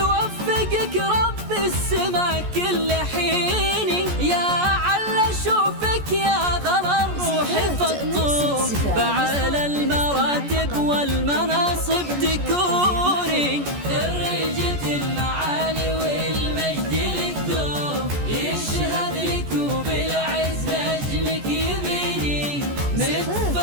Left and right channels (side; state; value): left; late; 14 ms